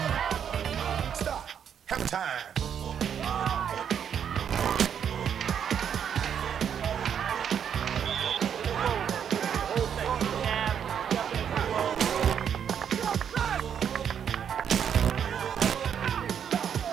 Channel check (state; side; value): quieter; left; 8.3 dB